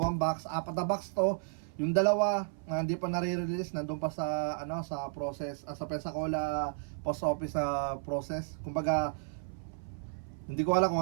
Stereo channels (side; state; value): left; silent; 55 dB below the other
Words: box, 4 na box to. Yung dalawa hindi pa nare-release, nandun pa sa sa process, sa Pensacola post office process. Kumbaga hindi ko alam